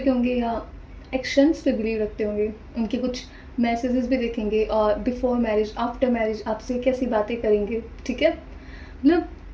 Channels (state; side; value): identical; both; correlation 1.00